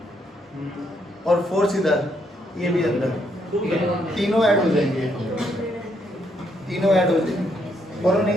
और फोर्स इधर, ये भी अंदर, तीनों ऐड हो जाएंगे, तीनों ऐड हो जाएंगे। बोलो नहीं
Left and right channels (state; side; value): normal; both; correlation 0.74